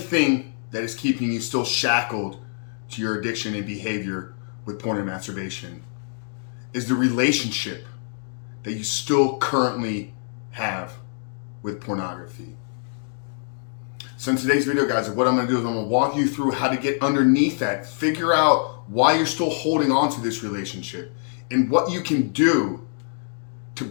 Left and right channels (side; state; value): right; silent; 62 dB below the other